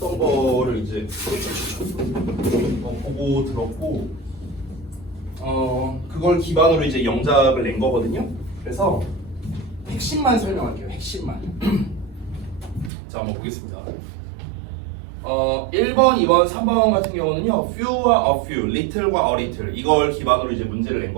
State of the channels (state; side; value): drops out; left; at 12.9 s